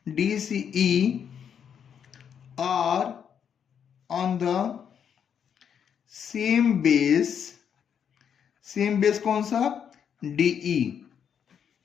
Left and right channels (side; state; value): right; quieter; 8.0 dB